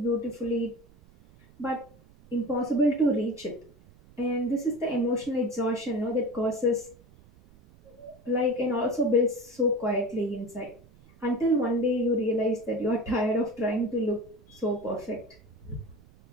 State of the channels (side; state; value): right; noise; rumble, 25 dB below the sound